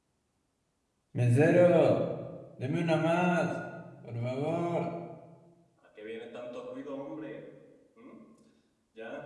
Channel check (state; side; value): identical; both; correlation 1.00